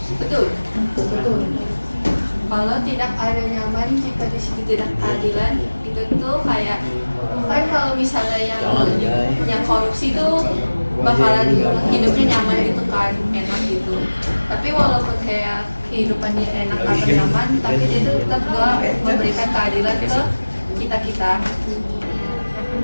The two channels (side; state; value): both; inverted; correlation -1.00